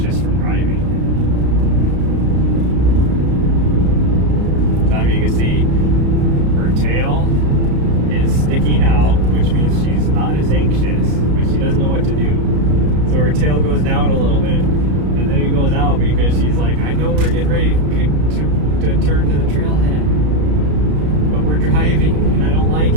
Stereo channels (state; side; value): late; left; 33 ms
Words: from driving. So you can see her tail is sticking out, which means she's not as anxious, but she doesn't know what to do. So her tail goes down a little bit, and then it goes out because she's like, I know we're getting ready to turn to the trailhead, but we're driving and I don't like